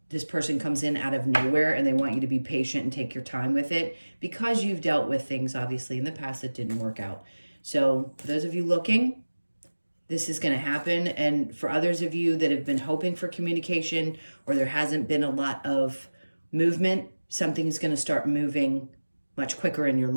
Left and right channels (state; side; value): inverted; both; correlation -1.00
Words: this person comes in out of nowhere, and they want you to be patient and take your time with it, because you've dealt with things obviously in the past that didn't work out. So for those of you looking, this is going to happen. And for others of you that have been hoping for communication, or there hasn't been a lot of movement, something is going to start moving much quicker in your